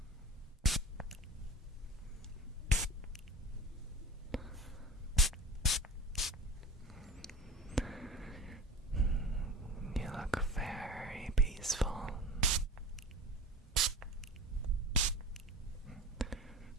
You look very peaceful.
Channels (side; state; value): both; normal; correlation 0.35